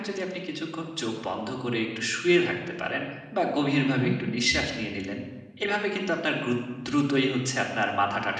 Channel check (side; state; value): both; identical; correlation 1.00